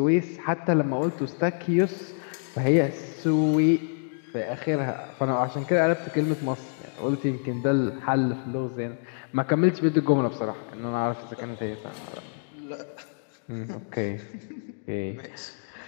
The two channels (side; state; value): right; silent; digital silence